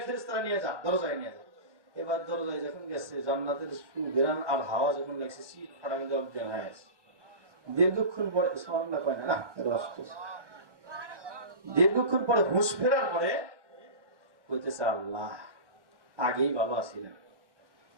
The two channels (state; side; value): late; left; 1.0 ms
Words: ফেরেশতারা নিয়ে যা, দরজায় নিয়ে যা। এবার দরজায় যখন গেছে, জান্নাতের সুঘ্রাণ আর হাওয়া যখন লাগছে, শীত ফাটা মধ্যে অজ্ঞান হয়ে আছে। দীর্ঘক্ষণ পরে সুবহানাল্লাহ কয় না, দীর্ঘক্ষণ পরে হুঁশ ফেরার পরে বলতেছে, আল্লাহ আগেই ভালো আছিলেন,